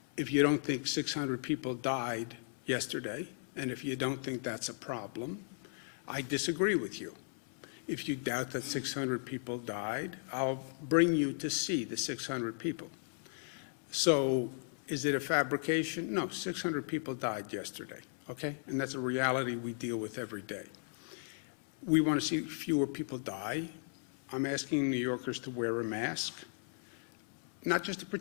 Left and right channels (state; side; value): silent; right; 54 dB below the other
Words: if you don't think 600 people died yesterday, and if you don't think that's a problem, I disagree with you. If you doubt that 600 people died, I'll bring you to see the 600 people. So is it a fabrication? No, 600 people died yesterday, okay? And that's a reality we deal with every day. We want to see fewer people die. I'm asking New Yorkers to wear a mask, not just to